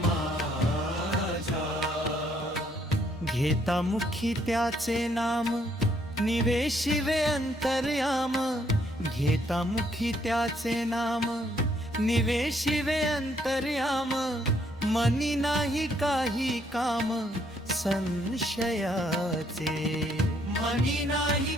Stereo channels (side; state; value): both; normal; correlation 0.69